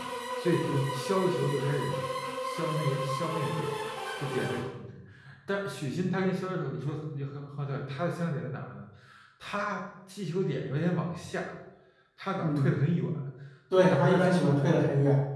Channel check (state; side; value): identical; both; correlation 1.00